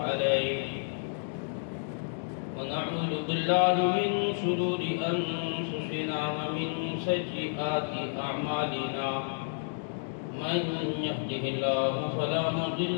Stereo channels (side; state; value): right; silent; digital silence